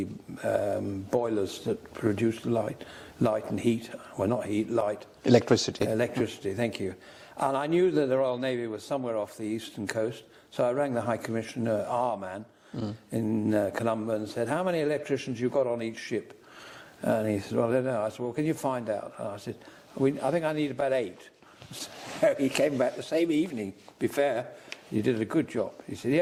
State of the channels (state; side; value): identical; both; correlation 1.00